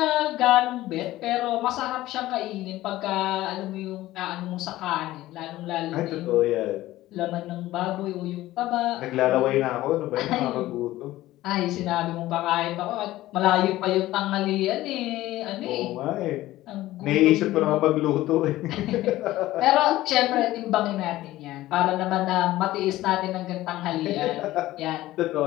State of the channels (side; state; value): right; quieter; 16.1 dB